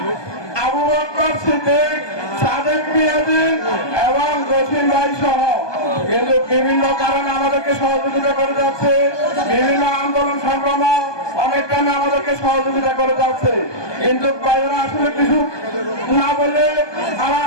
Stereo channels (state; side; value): late; right; 1.2 ms